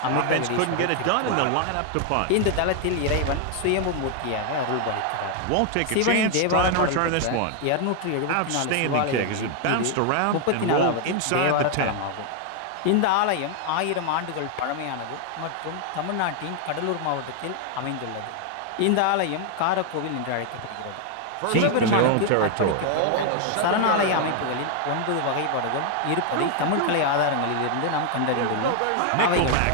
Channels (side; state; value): both; different; correlation 0.00